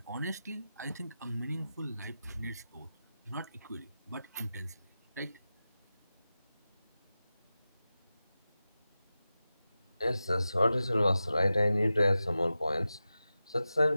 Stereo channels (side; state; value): both; inverted; correlation -0.93